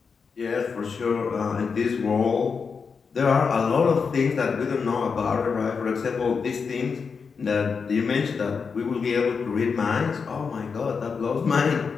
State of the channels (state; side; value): quieter; right; 5.5 dB